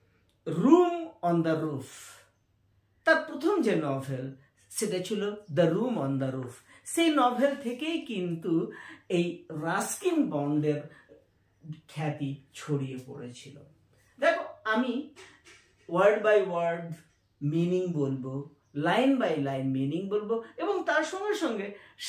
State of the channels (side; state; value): both; identical; correlation 1.00